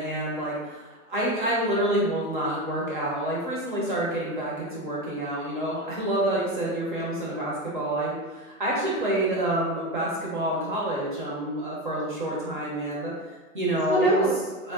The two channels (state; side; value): normal; both; correlation 0.20